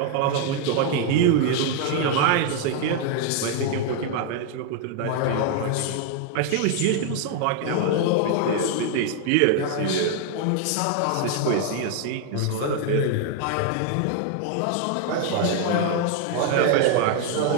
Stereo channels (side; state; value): both; different; correlation 0.00